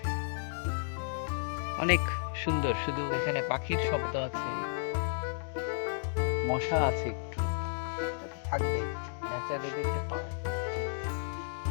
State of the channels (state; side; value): silent; right; digital silence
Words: অনেক সুন্দর। শুধু এখানে পাখির শব্দ আছে, মশা আছে একটু, থাকবে, ন্যাচারালি দেখতে পাওয়া।